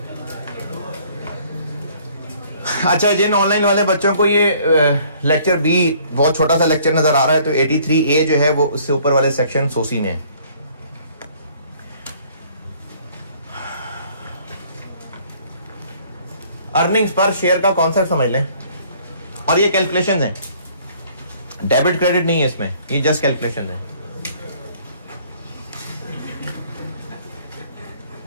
अच्छा, जिन ऑनलाइन वाले बच्चों को ये लेक्चर बी बहुत छोटा सा लेक्चर नजर आ रहा है, तो 83A जो है वो उससे ऊपर वाले सेक्शन सोसी में है। अर्निंग्स पर शेयर का कॉन्सेप्ट समझ लें, और ये कैलकुलेशन है, डेबिट क्रेडिट नहीं है इसमें, ये जस्ट कैलकुलेशन है।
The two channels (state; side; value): inverted; both; correlation -0.58